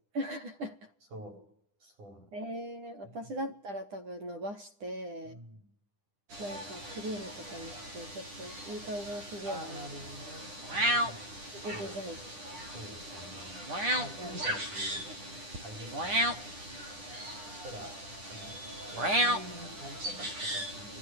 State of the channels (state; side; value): late; left; 9.9 ms